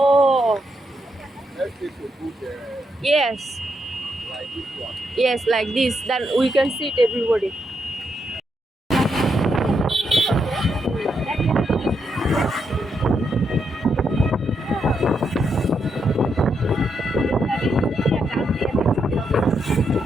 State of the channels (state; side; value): normal; both; correlation 0.81